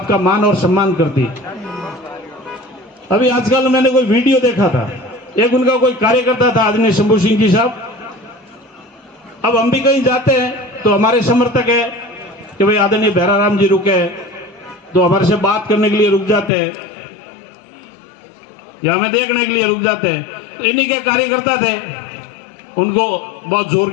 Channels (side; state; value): right; drops out; at 16.5 s